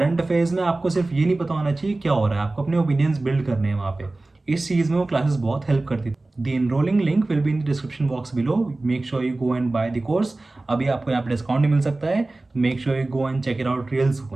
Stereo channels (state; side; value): quieter; left; 3.0 dB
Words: अफेयर्स में आपको सिर्फ ये नहीं पता होना चाहिए क्या हो रहा है, आपको अपने ओपिनियंस बिल्ड करने हैं वहाँ पे। इस चीज़ में वो क्लासेस बहुत हेल्प करती थी। The enrolling link will be in the description box below, make sure you go and by the course. अभी आपको यहाँ पे डिस्काउंट नहीं मिल सकता है, तो make sure you go and check it out real